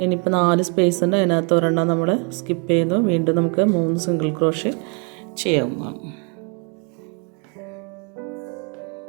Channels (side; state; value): left; quieter; 36.1 dB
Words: ഇനിയിപ്പോൾ 4 സ്പേസ് ഉണ്ട്, അതിനകത്ത് ഒരെണ്ണം നമ്മൾ സ്കിപ്പ് ചെയ്യുന്നു. വീണ്ടും നമുക്ക് 3 സിംഗിൾ ക്രോഷ്യ ചെയ്യാവുന്നതാണ്.